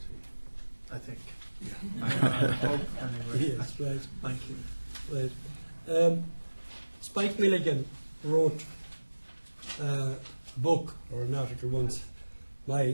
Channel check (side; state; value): both; inverted; correlation -1.00